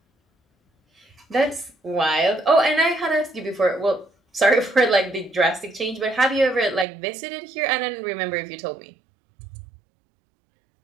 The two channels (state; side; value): drops out; left; at 6.9 s